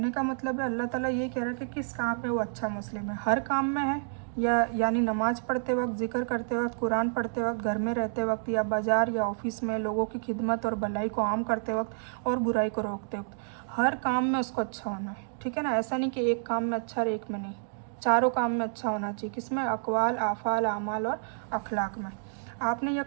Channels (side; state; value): left; silent; digital silence